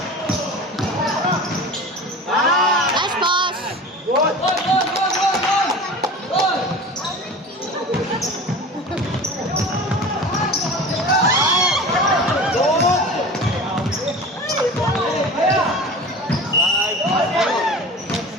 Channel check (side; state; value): both; normal; correlation 0.36